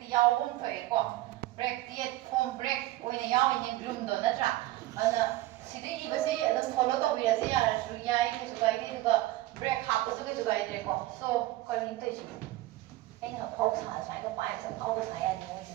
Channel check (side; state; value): left; quieter; 17.0 dB